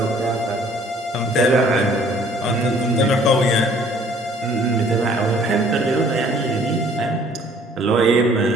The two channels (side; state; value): both; normal; correlation 0.57